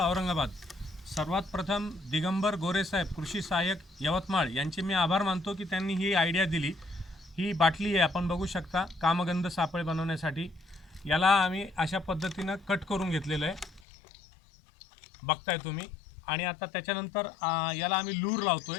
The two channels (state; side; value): drops out; right; at 13.8 s